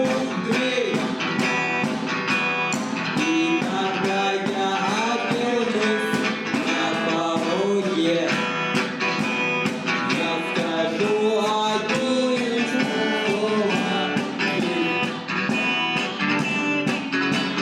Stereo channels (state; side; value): identical; both; correlation 1.00